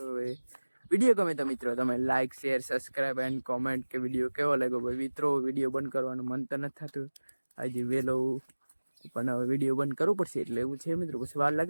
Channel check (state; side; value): inverted; both; correlation -1.00